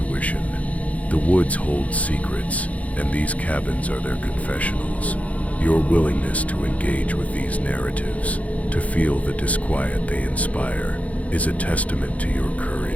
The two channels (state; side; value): late; right; 0.068 ms